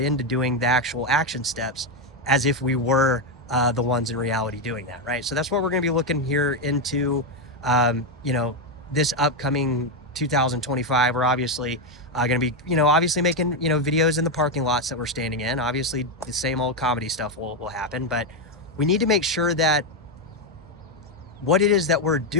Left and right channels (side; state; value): both; normal; correlation 0.05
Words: doing the actual action steps as if we were the ones in reality doing that, right? So that's what we're going to be looking here into, this upcoming 2025. We're obviously going to be, obviously making, videos in the parking lots that we're standing in. Obviously, the same old comedy stuff will happen, but we need to make sure that what it is that we're